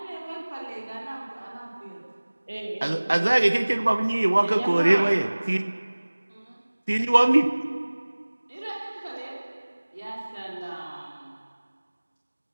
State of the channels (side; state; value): both; inverted; correlation -1.00